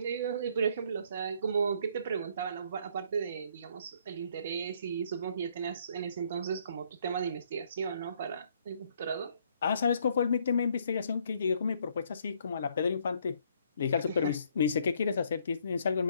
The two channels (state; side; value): inverted; both; correlation -0.66